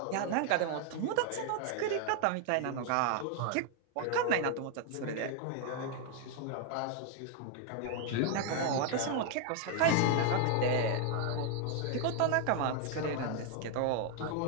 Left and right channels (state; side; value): different; both; correlation 0.00